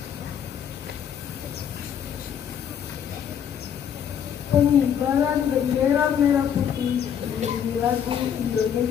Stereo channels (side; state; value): right; quieter; 8.6 dB